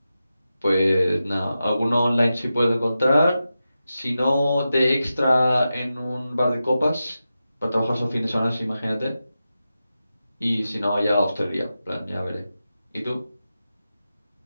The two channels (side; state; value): both; inverted; correlation -0.91